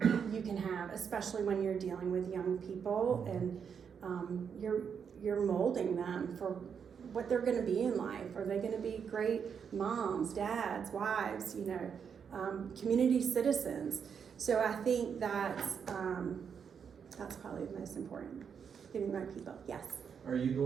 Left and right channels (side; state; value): left; quieter; 7.0 dB